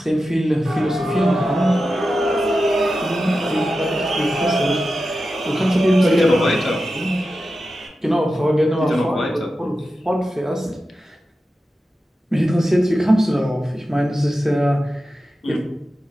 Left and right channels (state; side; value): normal; both; correlation 0.92